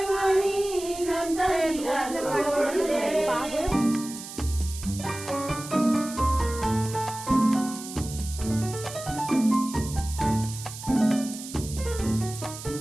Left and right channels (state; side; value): noise; right; hiss, 12 dB below the sound